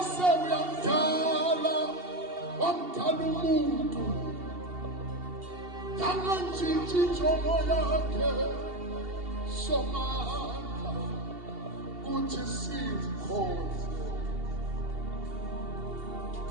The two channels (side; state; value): left; late; 2.7 ms